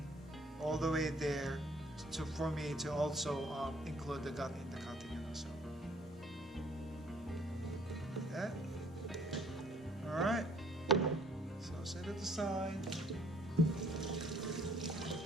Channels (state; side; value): normal; both; correlation 0.60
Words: all the way there, for me to also include the gut in the cutting. So like that. Alright, so set it aside.